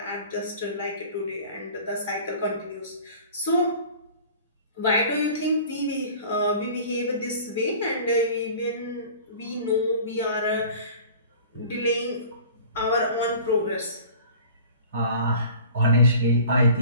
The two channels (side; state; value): both; inverted; correlation -0.44